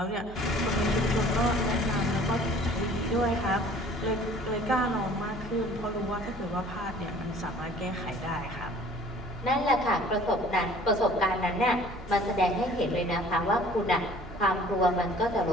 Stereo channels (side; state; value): right; noise; hum, 16 dB below the sound